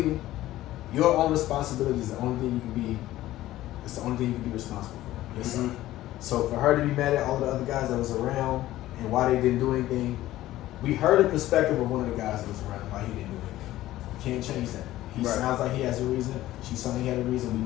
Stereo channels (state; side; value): quieter; right; 15.2 dB